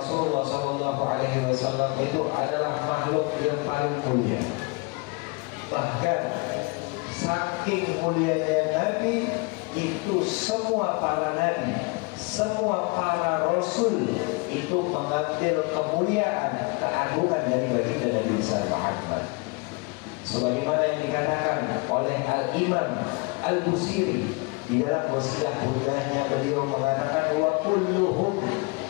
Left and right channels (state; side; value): quieter; right; 28.3 dB